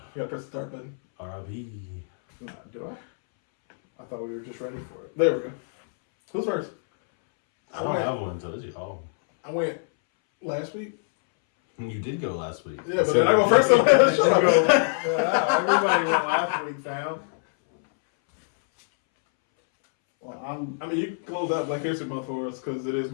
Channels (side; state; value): right; silent; 62 dB below the other